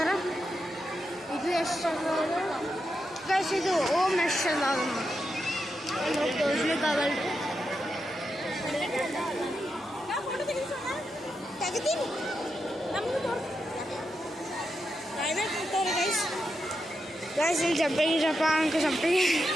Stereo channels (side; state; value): both; normal; correlation 0.86